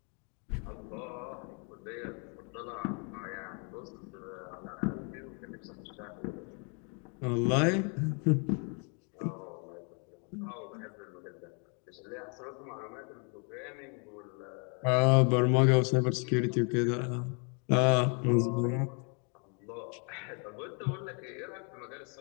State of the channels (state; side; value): quieter; right; 37.4 dB